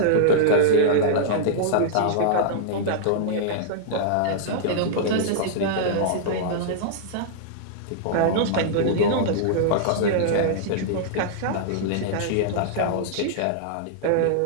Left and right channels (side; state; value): both; different; correlation -0.01